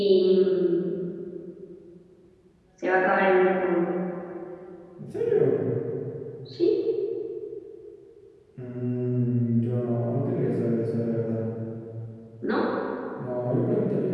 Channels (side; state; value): both; identical; correlation 1.00